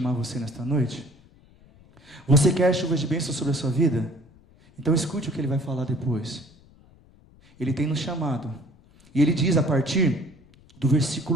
você nesta noite. Você quer chuvas de bênção sobre a sua vida? Então escute o que Ele vai falar depois. Ele tem nos chamado, e Ele diz a partir do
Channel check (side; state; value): left; noise; rumble, 27 dB below the sound